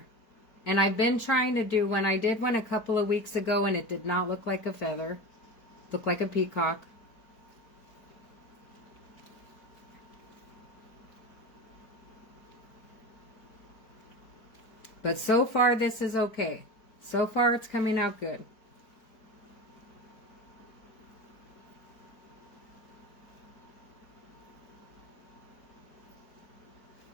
And I've been trying to do one. I did one a couple of weeks ago and it did not look like a feather. It looked like a peacock. But so far this is okay. So far it's coming out good.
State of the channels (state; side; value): late; right; 4.4 ms